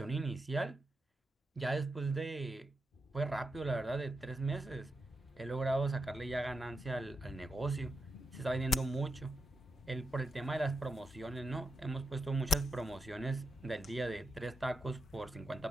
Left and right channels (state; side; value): normal; both; correlation 0.86